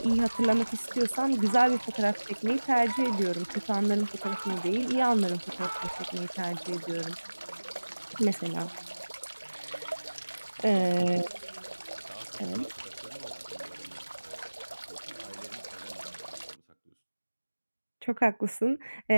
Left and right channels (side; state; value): both; inverted; correlation -1.00